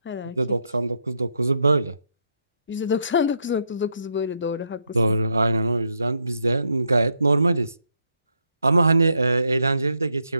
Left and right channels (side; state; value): both; inverted; correlation -0.79